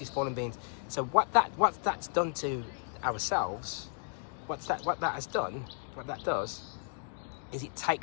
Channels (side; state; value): right; silent; 55 dB below the other